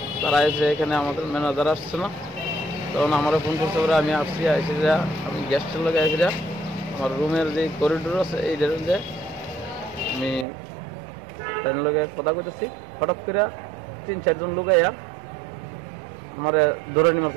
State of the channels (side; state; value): left; drops out; at 10.5 s